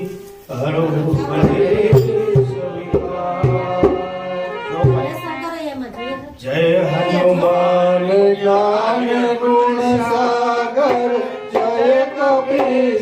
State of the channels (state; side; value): identical; both; correlation 1.00